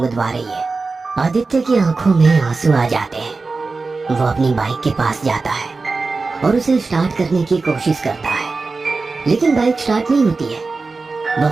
रही है। आदित्य की आंखों में आंसू आ जाते हैं। वो अपनी बाइक के पास जाता है और उसे स्टार्ट करने की कोशिश करता है, लेकिन बाइक स्टार्ट नहीं होती है। वह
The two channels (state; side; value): quieter; left; 3.9 dB